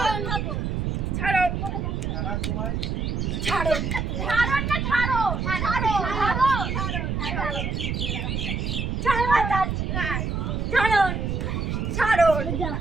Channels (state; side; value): noise; right; rumble, 1 dB below the sound